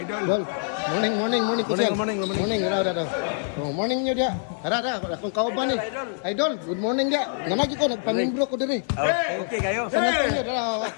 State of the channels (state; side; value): silent; right; 62 dB below the other